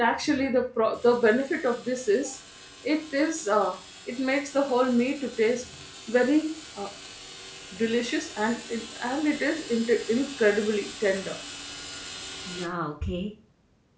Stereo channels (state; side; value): identical; both; correlation 1.00